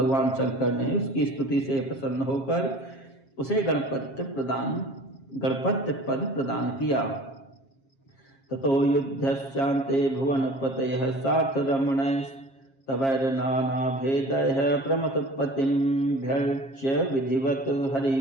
शंकर ने उसकी स्तुति से प्रसन्न होकर उसे गणपत्य पद प्रदान किया। ततो युद्धस्यान्ते भुवनपतयः सार्थरमणैस्तवैर्नानाभेदैः प्रमथपतिमभ्यर्च्य विधिवत्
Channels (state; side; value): late; right; 7.4 ms